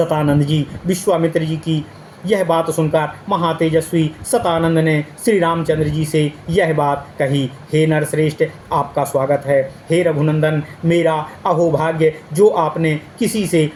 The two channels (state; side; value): identical; both; correlation 1.00